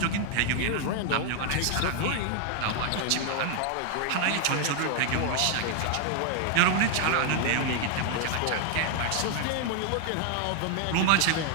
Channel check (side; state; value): both; different; correlation 0.00